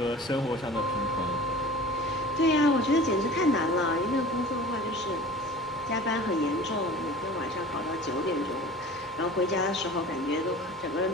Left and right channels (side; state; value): both; normal; correlation 0.41